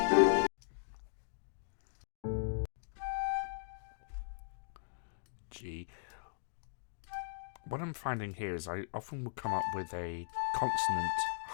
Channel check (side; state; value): right; silent; digital silence